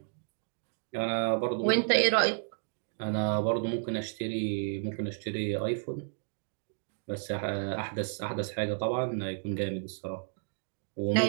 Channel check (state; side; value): silent; left; digital silence